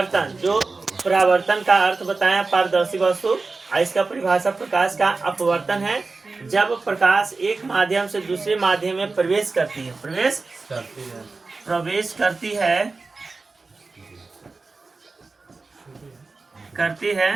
जो परावर्तन का अर्थ बताया पारदर्शी वस्तु, इसका परिभाषा प्रकाश का अपवर्तन है जब प्रकाश एक माध्यम से दूसरे माध्यम में प्रवेश करती है, करती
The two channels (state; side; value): quieter; left; 3.9 dB